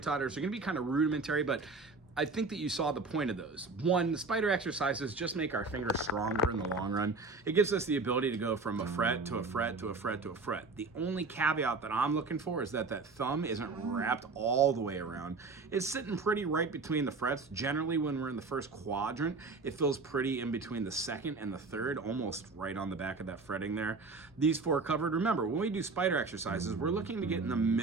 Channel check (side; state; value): left; quieter; 3.9 dB